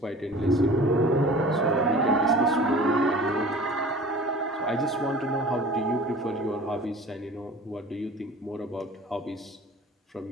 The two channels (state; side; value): normal; both; correlation 0.43